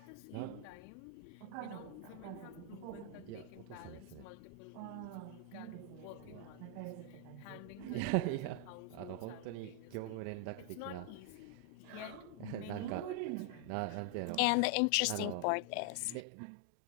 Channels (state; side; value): different; both; correlation 0.00